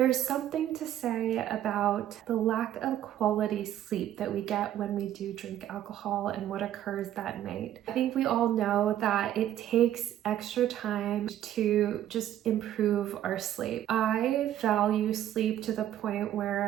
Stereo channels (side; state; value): left; quieter; 11.8 dB